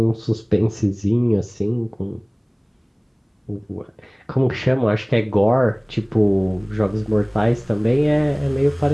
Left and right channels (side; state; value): both; identical; correlation 1.00